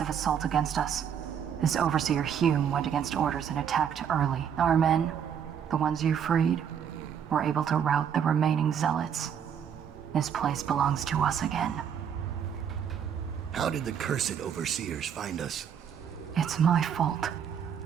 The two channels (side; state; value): left; quieter; 8.2 dB